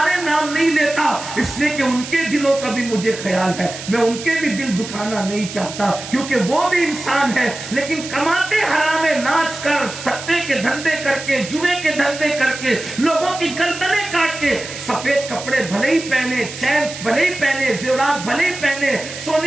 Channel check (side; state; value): right; noise; hiss, 11 dB below the sound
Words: رہے، نام نہیں لیتا اس لیے کہ ان کے دلوں کا بھی مجھے خیال ہے، میں ان کے بھی دل دکھانا نہیں چاہتا، کیونکہ وہ بھی انسان ہے، لیکن کماتے حرام ناچ کر، سٹے کے دھندے کر کے، جوئے کے دھندے کر کے، لوگوں کی گردنیں کاٹ کے، سفید کپڑے بھلے ہی پہنے، چین بھلے ہی پہنے، زیورات بھلے ہی پہنے،